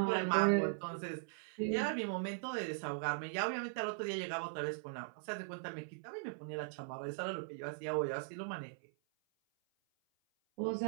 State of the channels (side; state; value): left; silent; 51 dB below the other